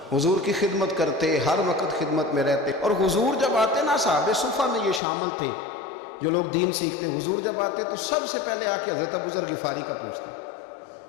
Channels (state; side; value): drops out; right; at 5.0 s